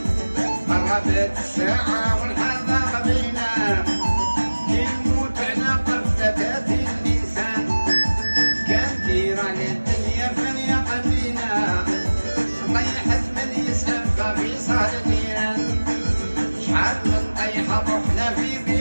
قربت الساعة والحال ضاق بينا يموت على قفزة الإنسان كان دير على الدنيا فليقى بينا طيحت من يسأل ففي صدرنا شحال من طيحة رحنا في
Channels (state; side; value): inverted; both; correlation -1.00